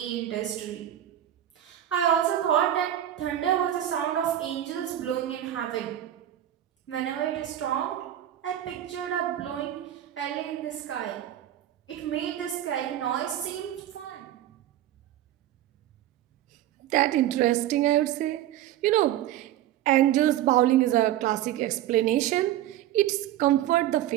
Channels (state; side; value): quieter; left; 12.5 dB